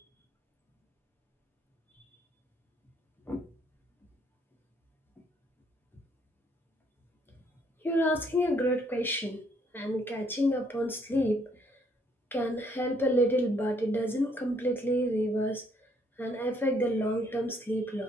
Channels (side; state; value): both; normal; correlation 0.68